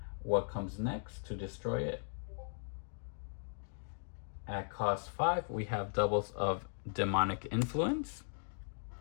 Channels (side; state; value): right; silent; digital silence